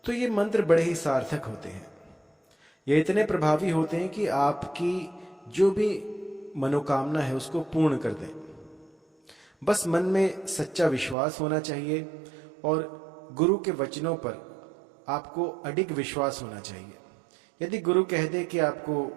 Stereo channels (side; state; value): left; drops out; at 11.2 s